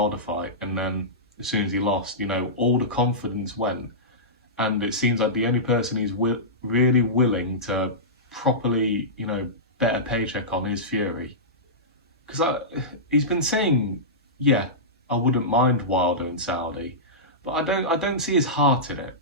fight, and then as soon as he lost. You know, all the confidence went, and it seems like the only person he's really willing to properly, you know, bet a paycheck on is Fury. Because he's been saying, yeah, I wouldn't mind Wilder and Saudi, but I don't see his heart in it.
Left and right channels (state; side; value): normal; both; correlation -0.16